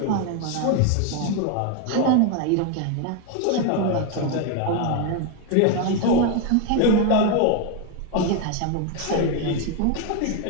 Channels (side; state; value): both; different; correlation 0.01